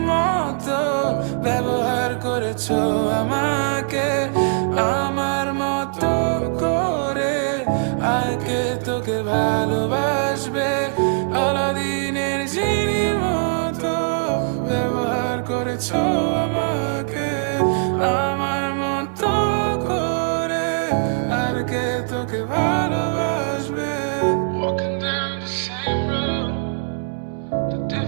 মতো ব্যবহার করেছো আমাকে, আমার মতো করে আর কে তোকে ভালোবাসবে। আলাদিনের জিনির মতো ব্যবহার করেছো আমাকে, আমার মতো করে আর কে তোকে ভালোবাসবে। Walking down the same road, the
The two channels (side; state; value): left; silent; 65 dB below the other